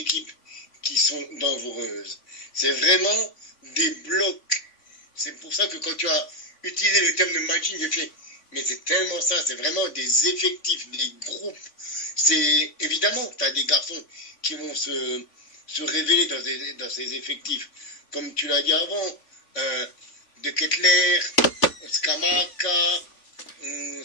qui sont dangereuses. C'est vraiment des blocs. C'est pour ça que quand tu as utilisé le terme de matching, j'ai fait, mais c'est tellement ça, c'est vraiment des effectifs, des groupes. C'est évidemment que tu as des garçons qui vont se révéler dans ces effectifs. Comme tu l'as dit avant, De Ketelaere, Scamacca,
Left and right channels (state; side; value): late; right; 3.5 ms